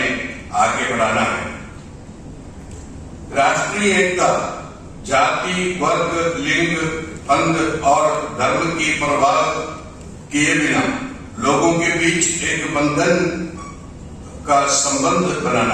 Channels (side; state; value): both; identical; correlation 1.00